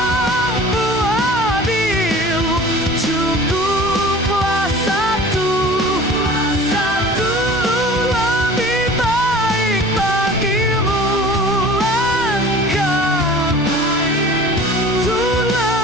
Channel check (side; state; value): both; normal; correlation 0.43